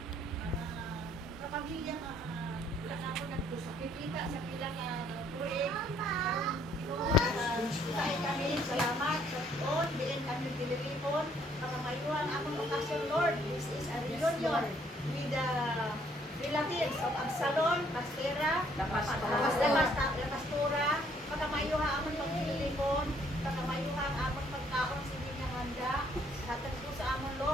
mga kapamilya nga wala na ako nagkusakita sa pila nga project. Ginoo, tayo kami, salamat sa Lord, bilin kami diliripon, pakamayuan akong okasyon Lord. This is a reunion with the relatives of Absalom, Pastera, Pastora, pakamayuha amon pagdilipon, pakamayuha ang amon pagkaon sa inyong handa. Hatag po sa amon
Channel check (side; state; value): both; normal; correlation 0.65